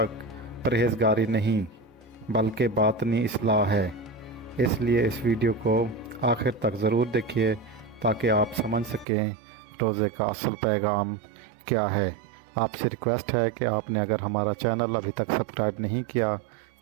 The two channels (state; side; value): drops out; left; at 9.1 s